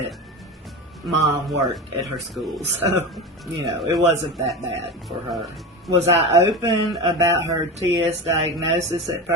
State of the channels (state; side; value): normal; both; correlation 0.25